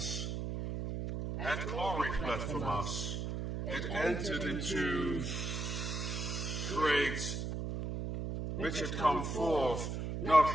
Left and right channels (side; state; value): right; noise; hum, 3 dB below the sound